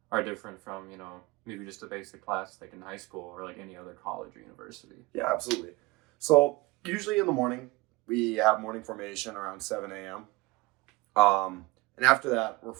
are different from maybe just a basic class like in high school or like any other college or university? Yeah, absolutely. So usually in the morning we have morning formation around 7 a.m. And after that we're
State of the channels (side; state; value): left; quieter; 21.7 dB